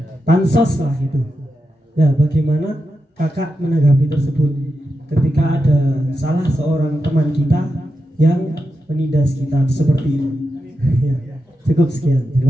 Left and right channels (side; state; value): both; normal; correlation 0.88